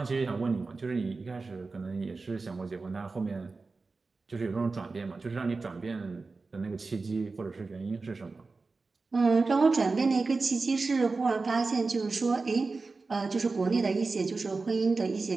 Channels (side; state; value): left; quieter; 3.9 dB